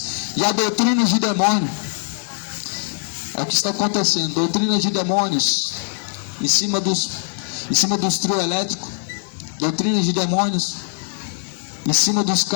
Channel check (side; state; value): right; silent; digital silence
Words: e a doutrinas de demônio. É o que está acontecendo, doutrinas de demônios em cima dos trio elétricos, doutrinas de demônios em cima dos